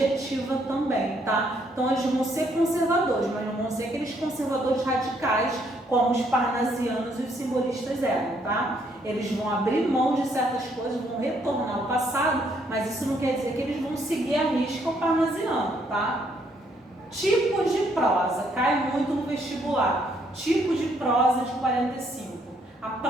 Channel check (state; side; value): normal; both; correlation 0.70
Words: também, tá? Então, eles vão ser conservadores, mas não vão ser aqueles conservadores radicais como os parnasianos e os simbolistas eram, tá? Eles vão abrir mão de certas coisas, vão retornar ao passado, mas isso não quer dizer que eles vão seguir a risca o parnasiano, tá? Tipos de prosa, cai muito no vestibular. Tipo de prosa de 45. A